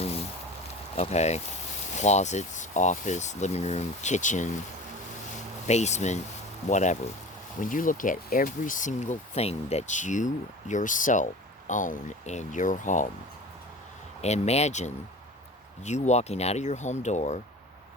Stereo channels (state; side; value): normal; both; correlation 0.36